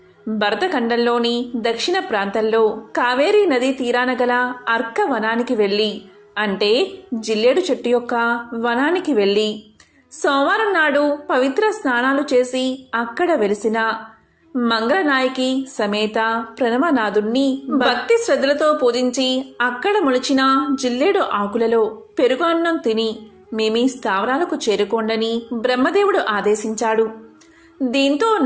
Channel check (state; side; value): identical; both; correlation 1.00